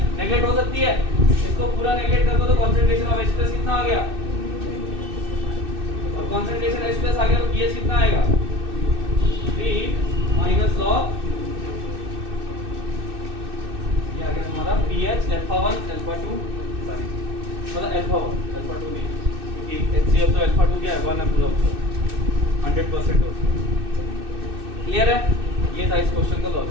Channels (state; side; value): late; left; 2.6 ms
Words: नेगलेक्ट हो सकती है। इसको पूरा नेगलेक्ट कर दो तो कॉन्सेंट्रेशन ऑफ H प्लस कितना आ गया? और कॉन्सेंट्रेशन H प्लस आ गया तो pH कितना आएगा? 3 माइनस लॉग, ये आ गया तुम्हारा pH अल्फा 1 अल्फा 2, सॉरी मतलब अल्फा 1 अल्फा 2 नहीं, क्योंकि HCl तो अल्फा 2 क्या है? 1 है पूरा 100% हो। क्लियर है? ये था इस क्वेश्चन का